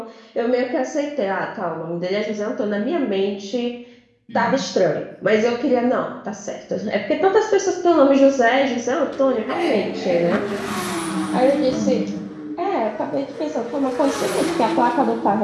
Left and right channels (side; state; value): both; identical; correlation 1.00